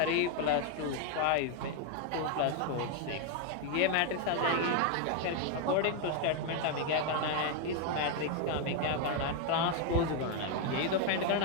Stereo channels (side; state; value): both; different; correlation 0.01